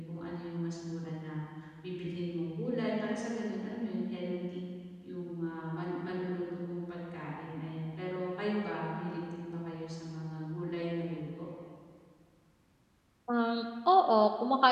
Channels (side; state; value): both; identical; correlation 1.00